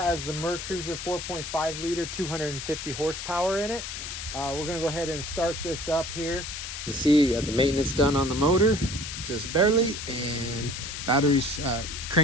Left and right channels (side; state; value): left; noise; hiss, 7 dB below the sound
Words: the Mercruiser 4.5 liter, 250 horsepower in it. We're gonna go ahead and start this up here. You see the maintenance done on the motor, just barely, and batteries